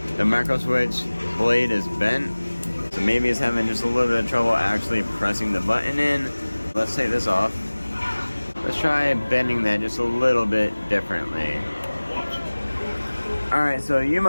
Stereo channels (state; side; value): inverted; both; correlation -1.00